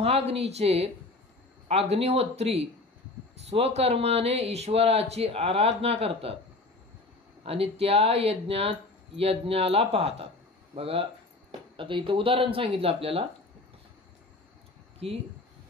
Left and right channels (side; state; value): right; quieter; 3.1 dB